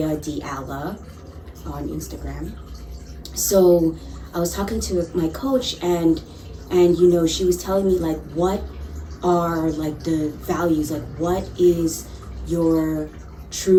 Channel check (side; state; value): both; identical; correlation 1.00